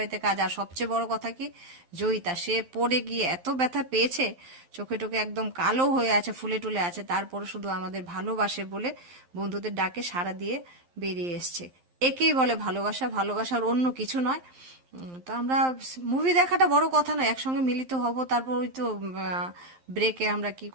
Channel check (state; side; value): late; left; 11 ms